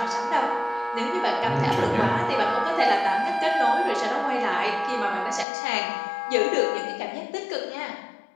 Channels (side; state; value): right; drops out; at 5.5 s